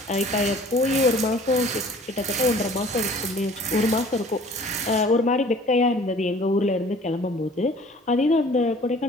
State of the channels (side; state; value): both; normal; correlation 0.50